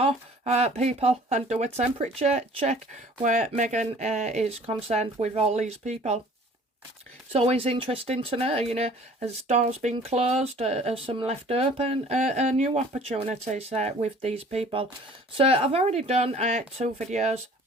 people and do a temperature check where Meghan is concerned with all these people. It's always interesting to know, as doors been closed, as some left open, new opportunities with these people. So I've already done 2 videos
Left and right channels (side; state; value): both; normal; correlation 0.51